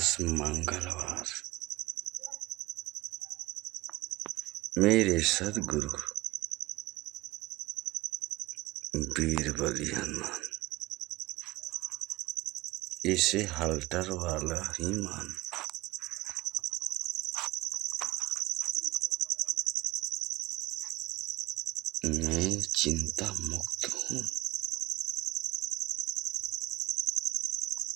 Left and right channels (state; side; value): quieter; left; 19.1 dB